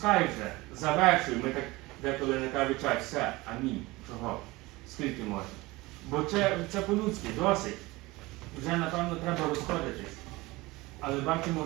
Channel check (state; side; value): quieter; left; 21.3 dB